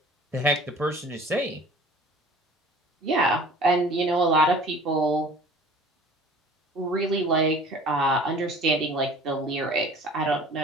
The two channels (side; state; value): both; normal; correlation 0.46